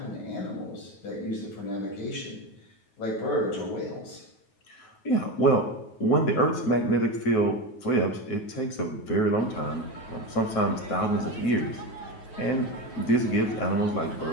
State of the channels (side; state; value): right; late; 9.4 ms